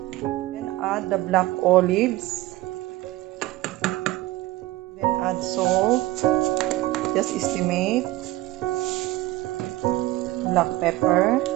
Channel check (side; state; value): left; quieter; 17.4 dB